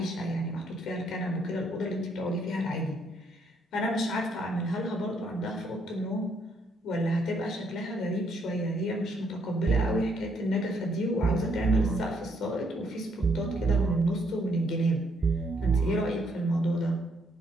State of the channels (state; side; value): normal; both; correlation 0.71